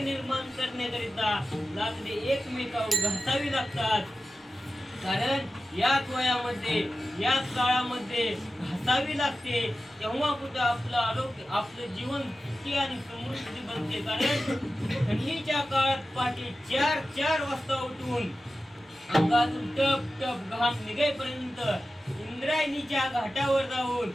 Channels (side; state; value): both; normal; correlation 0.94